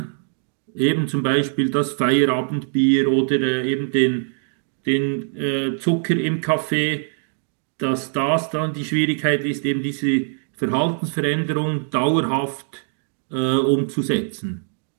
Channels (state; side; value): silent; left; digital silence